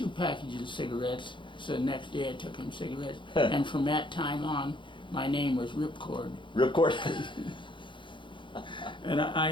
packages of cigarettes. So the next day I took him cigarettes, and from that time on, my name was Ripcord. Ripcord? And I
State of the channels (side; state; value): right; late; 0.23 ms